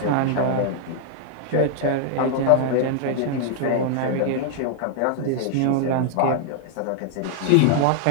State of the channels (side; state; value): both; different; correlation 0.00